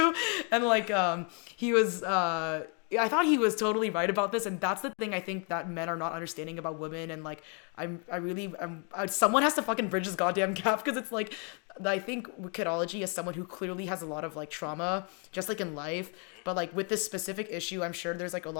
and like he was I thought he was totally right about this, and that's the thing I think that men are not understanding about women. And like someone has to fucking bridge this goddamn gap, because it's like I think kidology is someone who clearly has a lot of like trauma, just like in life, Mm-hmm. but like with this specific issue, I'm sure there's like a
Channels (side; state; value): right; quieter; 37.6 dB